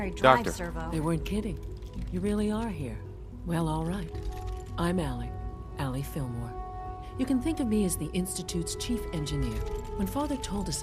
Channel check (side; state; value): both; identical; correlation 1.00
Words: drive Doctor. servo. They weren't kidding. You really are here. Well, all right. I'm Allie Fillmore. You can think of me as the Institute's chief engineer. When Father told us